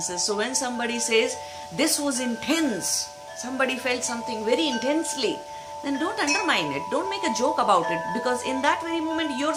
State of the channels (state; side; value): identical; both; correlation 1.00